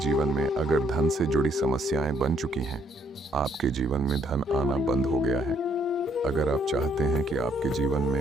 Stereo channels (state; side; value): normal; both; correlation 0.69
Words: में अगर धन से जुड़ी समस्याएं बन चुकी हैं, आपके जीवन में धन आना बंद हो गया है, अगर आप चाहते हैं कि आपके जीवन